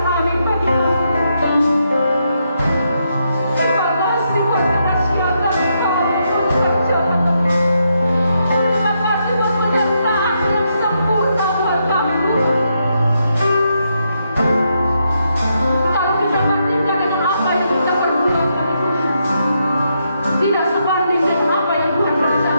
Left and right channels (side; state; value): both; inverted; correlation -0.80